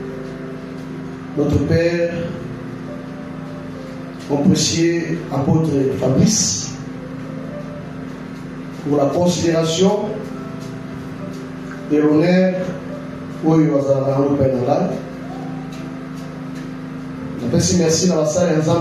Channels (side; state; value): both; identical; correlation 1.00